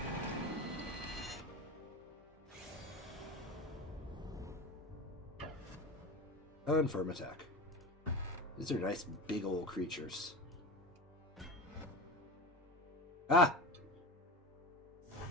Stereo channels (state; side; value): normal; both; correlation 0.28